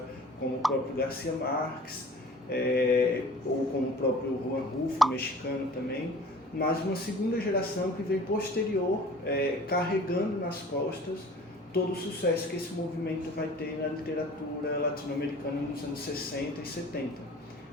como o próprio Garcia Marques, ou como o próprio Juan Rulfo, mexicano também, mas uma segunda geração que vem posterior, carregando nas costas todo o sucesso que esse movimento vai ter na literatura latino-americana nos anos 60 e 70.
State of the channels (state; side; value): normal; both; correlation 0.46